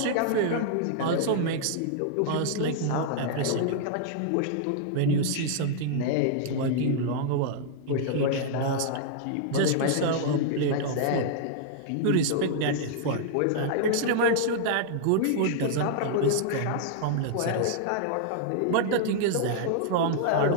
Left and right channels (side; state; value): both; different; correlation -0.01